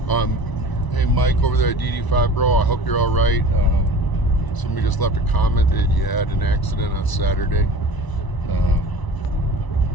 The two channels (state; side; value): late; right; 1.0 ms